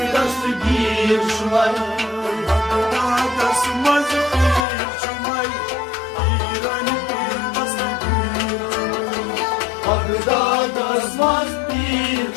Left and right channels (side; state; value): right; drops out; at 4.7 s